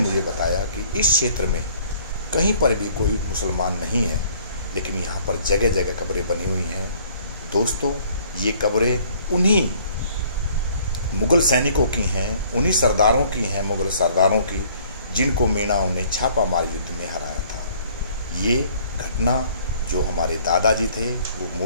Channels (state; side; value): inverted; both; correlation -0.58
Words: बताया कि इस क्षेत्र में कहीं पर भी कोई मुसलमान नहीं है, लेकिन यहाँ पर जगह जगह कब्रें बनी हुई हैं। दोस्तों ये कब्रें उन्हीं मुग़ल सैनिकों की हैं, उन्हीं सरदारों की हैं, मुग़ल सरदारों की, जिनको मीणाओं ने छापामार युद्ध में हराया था। ये घटना जो हमारे दादाजी थे वो